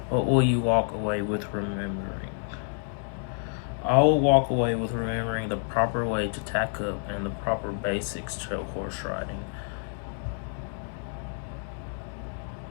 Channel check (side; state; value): right; silent; 59 dB below the other